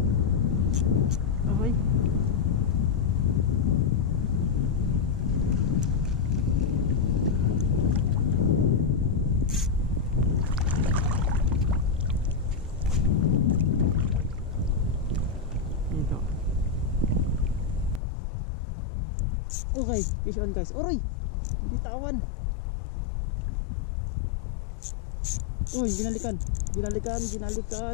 Okay. Okay, fish on guys. Oroy, binitawan. Uy, binalikan.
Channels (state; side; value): drops out; right; at 18.0 s